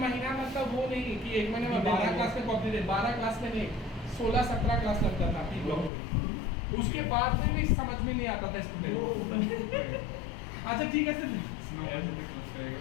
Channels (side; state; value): right; drops out; at 5.9 s